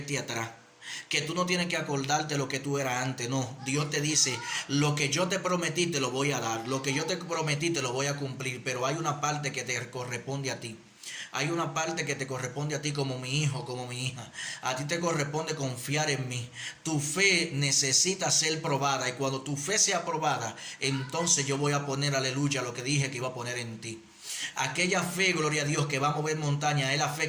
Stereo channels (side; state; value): both; identical; correlation 1.00